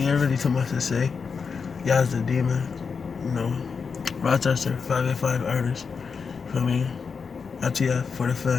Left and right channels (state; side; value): quieter; right; 5.5 dB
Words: ain't really too much to say. Yazz Da Demon, Rochester, 585 artist. For me, ITF for the